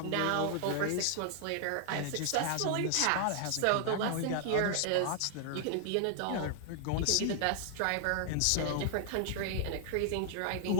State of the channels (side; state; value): both; different; correlation 0.00